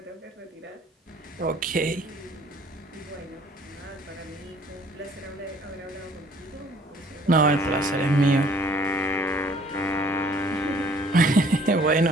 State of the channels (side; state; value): both; normal; correlation 0.57